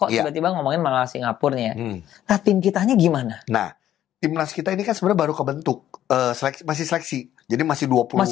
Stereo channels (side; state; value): right; quieter; 11.8 dB